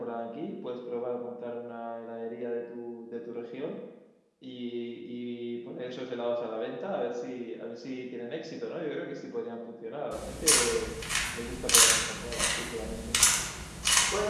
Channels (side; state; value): both; identical; correlation 1.00